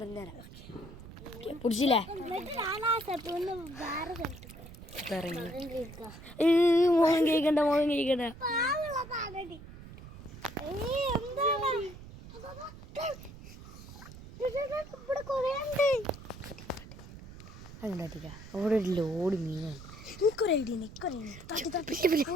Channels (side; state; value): right; noise; rumble, 15 dB below the sound